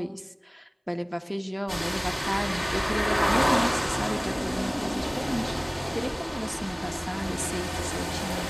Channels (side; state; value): both; identical; correlation 1.00